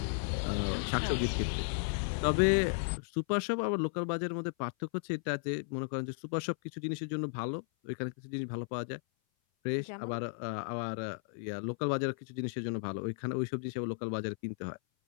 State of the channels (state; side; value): silent; right; 55 dB below the other